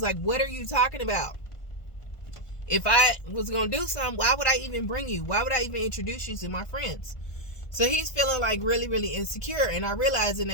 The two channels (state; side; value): late; right; 1.5 ms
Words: like, what are you talking about? If I was going to do something, why would I even bring you? Why would I even introduce you to my friends? So he's feeling like really, really insecure. And I realized in